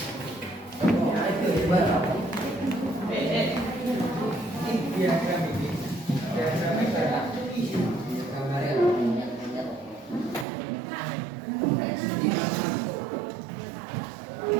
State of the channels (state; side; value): drops out; left; at 10.5 s